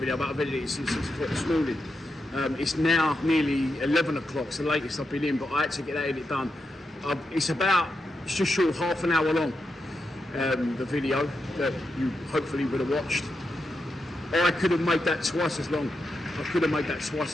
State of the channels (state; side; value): normal; both; correlation 0.86